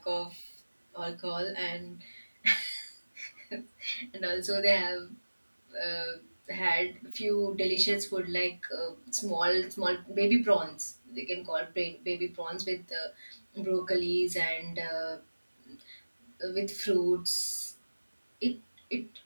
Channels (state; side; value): inverted; both; correlation -1.00